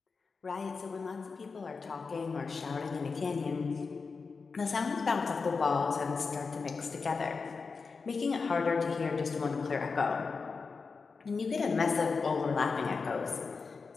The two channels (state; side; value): quieter; right; 4.7 dB